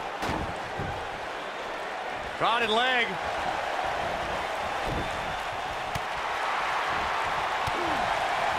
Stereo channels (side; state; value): both; identical; correlation 1.00